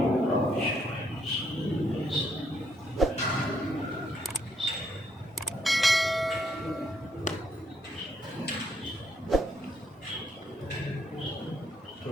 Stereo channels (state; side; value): normal; both; correlation 0.73